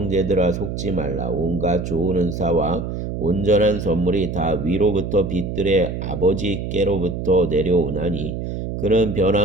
속지 말라. 온갖 좋은 은사와 온전한 선물이 다 위로부터 빛들의 아버지께로부터 내려오나니 그는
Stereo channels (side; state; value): right; noise; hum, 5 dB below the sound